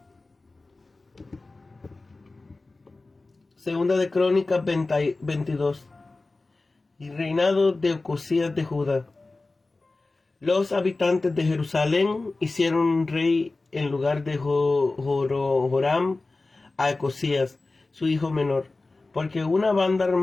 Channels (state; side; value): quieter; right; 3.3 dB